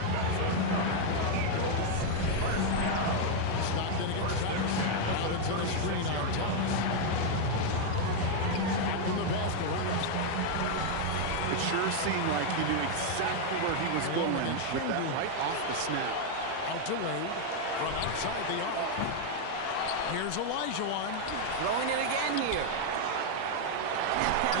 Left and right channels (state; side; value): different; both; correlation 0.00